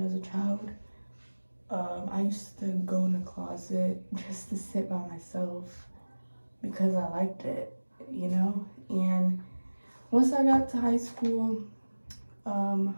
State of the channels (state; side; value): inverted; both; correlation -1.00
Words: as a child. I used to go in the closet just to sit by myself because I liked it, And once I got to high school,